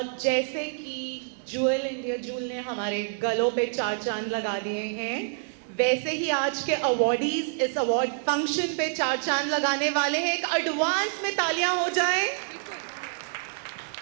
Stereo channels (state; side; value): silent; left; digital silence